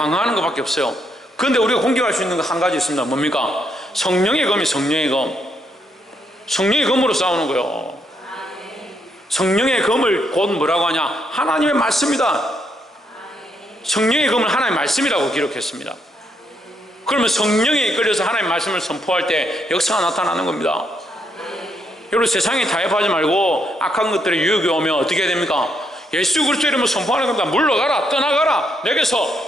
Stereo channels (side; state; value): both; normal; correlation 0.76